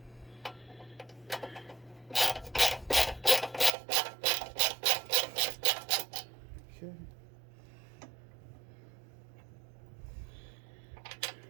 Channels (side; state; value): left; drops out; at 3.7 s